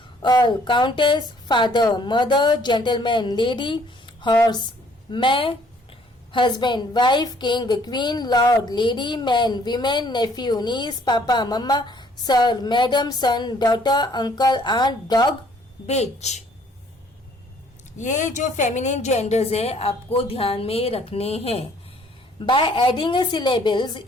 earl, countess, father, mother, gentleman, lady, horse, man, husband, wife, king, queen, lord, lady, man, women, nephew, niece, papa, mama, sir, madam, son, daughter, uncle, aunt, dog, bitch. ये जो feminine genders है आपको ध्यान में रखने हैं. By adding a syllables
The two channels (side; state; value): both; normal; correlation 0.61